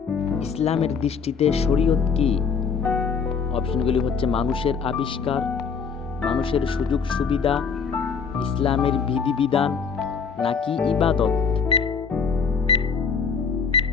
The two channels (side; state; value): right; quieter; 5.9 dB